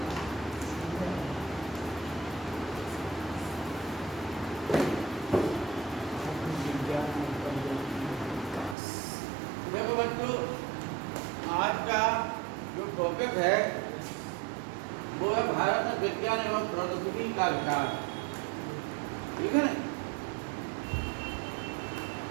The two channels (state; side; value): drops out; left; at 8.8 s